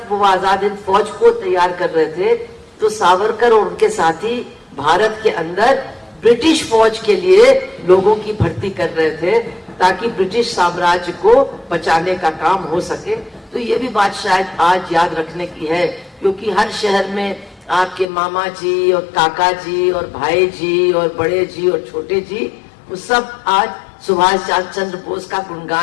वो आजाद हिंद फौज को तैयार कर रहे थे, तो सावरकर और उनके साथी भारत के अंदर ब्रिटिश फौज के लिए लोगों की भर्ती कर रहे थे ताकि ब्रिटिश साम्राज्य को बचाने का काम हो सके। तो ये भी बात शायद आज याद रखने की है, क्योंकि हर शहर में आपके मामा जी और काका जी और भाई जी और बड़े जी और छोटे जी, वो सब आज सुभाष चंद्र बोस का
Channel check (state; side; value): drops out; right; at 18.1 s